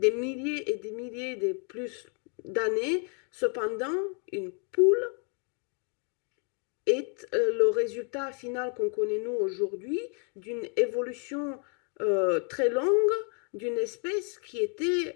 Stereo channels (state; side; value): quieter; right; 39.1 dB